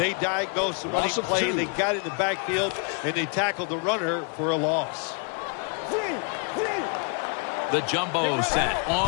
diagnosed the running play. They got it in the backfield, and they tackled the runner for a loss. The jumbo set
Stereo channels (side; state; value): right; quieter; 38.8 dB